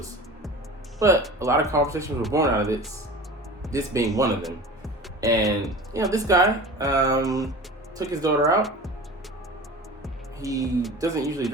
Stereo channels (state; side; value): normal; both; correlation 0.36